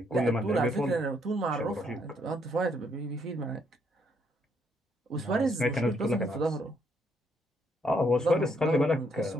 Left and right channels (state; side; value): normal; both; correlation 0.72